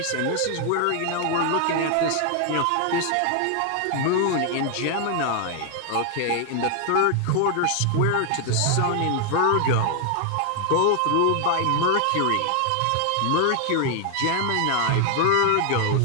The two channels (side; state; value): both; different; correlation 0.00